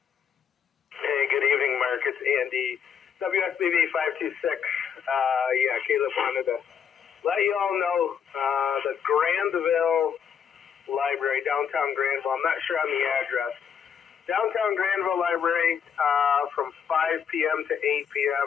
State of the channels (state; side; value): quieter; right; 7.6 dB